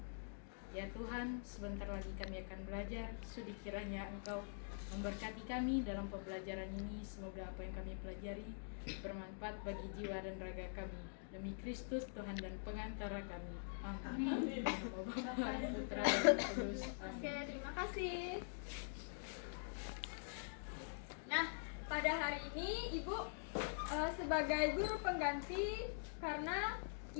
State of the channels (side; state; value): right; silent; digital silence